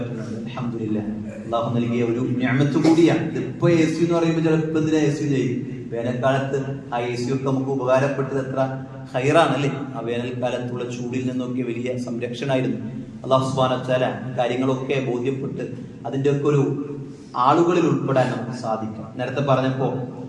അൽഹംദുലില്ലാഹ്, അല്ലാഹു നൽകിയ ഒരു നിഅമത്ത് കൂടിയാണ്. ഇതിപ്പോ AC എന്ന് പറയുമ്പോൾ ചിലപ്പോൾ എന്തിനാ AC ചെയ്യും. വേനൽക്കാലത്ത് ആ AC ഒക്കെ നമുക്ക് ഉപകാരപ്പെട്ടത് എത്ര ഹൈറാണല്ലേ. ആ വേനൽക്കാലത്തുള്ള ചൂടിൽ നിന്നൊക്കെ വലിയ സംരക്ഷണമായിരുന്നു. അല്ലാഹു സുബ്ഹാനഹു വ തആല കാര്യങ്ങളൊക്കെ ബോധ്യപ്പെട്ട് അതിൻ്റെ ഒക്കെ ഒരു ആളുകളിൽ ഉൾപ്പെടാൻ നമുക്ക് സാധിക്കും. നേരത്തെ പറഞ്ഞപ്പോ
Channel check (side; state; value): both; identical; correlation 1.00